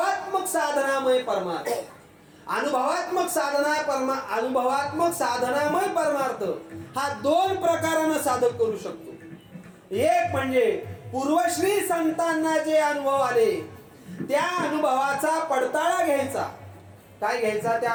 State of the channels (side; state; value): both; identical; correlation 1.00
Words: साधनामय परमार्थ. अनुभवात्मक साधनामय परमार्थ हा दोन प्रकारानं साधक करू शकतो. एक म्हणजे पूर्वश्री संतांना जे अनुभव आले त्या अनुभवाचा पडताळा घ्यायचा. काय घ्यायचा? त्या